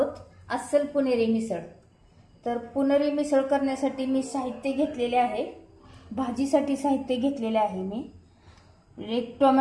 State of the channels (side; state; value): both; identical; correlation 1.00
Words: अस्सल पुणेरी मिसळ। तर पुणेरी मिसळ करण्यासाठी मी साहित्य घेतलेले आहे। भाजीसाठी साहित्य घेतलेले आहे मी एक